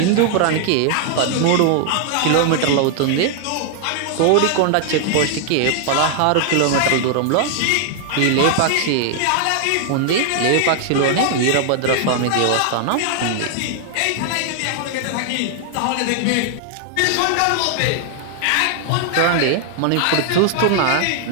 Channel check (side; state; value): both; different; correlation 0.00